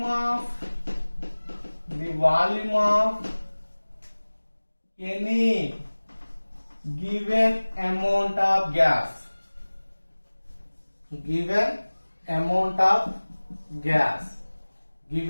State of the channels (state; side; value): inverted; both; correlation -1.00